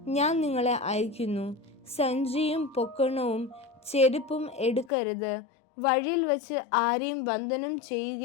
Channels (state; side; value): drops out; right; at 4.9 s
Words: ഞാൻ നിങ്ങളെ അയക്കുന്നു. സഞ്ചിയും പൊക്കണവും ചെരുപ്പും എടുക്കരുത്. വഴിയിൽ വച്ച് ആരെയും വന്ദനം